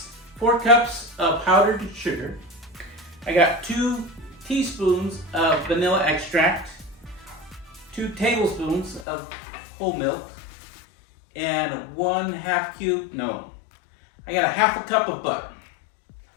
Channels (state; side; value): drops out; right; at 9.1 s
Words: 4 cups of powdered sugar. I got 2 teaspoons of vanilla extract, 2 tablespoons of whole milk, and 1/2 cube, no, I got a 1/2 cup of butter.